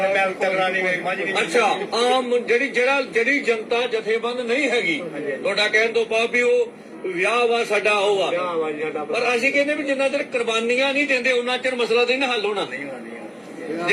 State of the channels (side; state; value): both; identical; correlation 1.00